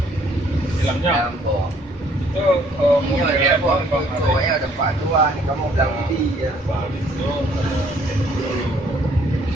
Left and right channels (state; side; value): normal; both; correlation 0.62